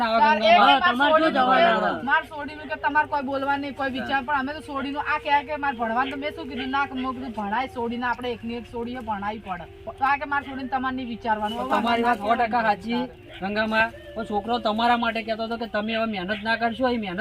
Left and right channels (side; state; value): both; identical; correlation 1.00